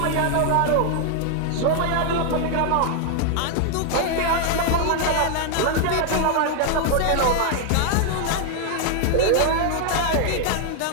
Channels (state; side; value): different; both; correlation 0.00